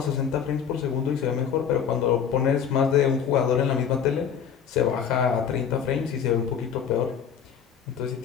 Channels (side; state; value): right; quieter; 7.7 dB